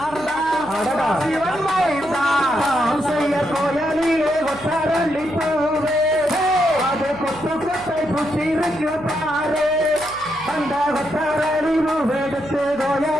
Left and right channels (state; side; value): noise; right; hum, 20 dB below the sound